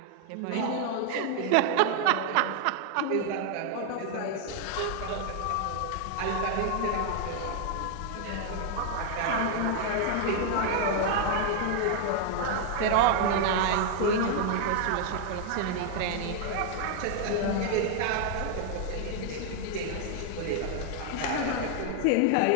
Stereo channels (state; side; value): different; both; correlation 0.00